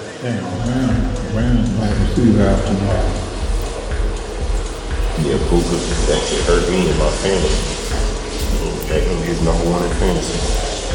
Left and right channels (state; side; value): identical; both; correlation 1.00